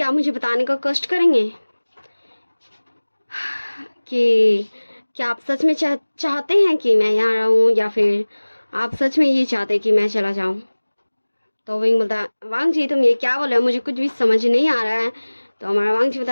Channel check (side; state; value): both; inverted; correlation -1.00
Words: मुझे बताने का कष्ट करेंगे कि क्या आप सच में चाहते हैं कि मैं यहाँ रहूँ या फिर आप सच में ये चाहते कि मैं चला जाऊँ? तो विंग बोलता वांगजी तुम ये क्या बोल रहे हो, मुझे कुछ भी समझ नहीं आ रहा है। तो हमारा वांगजी